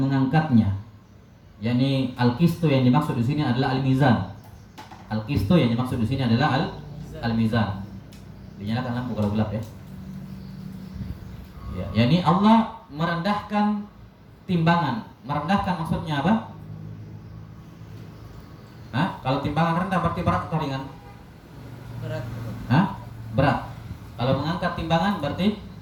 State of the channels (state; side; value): identical; both; correlation 1.00